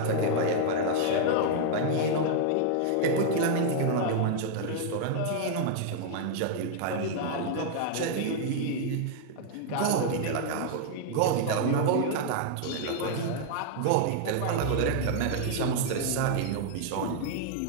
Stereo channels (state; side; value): different; both; correlation -0.01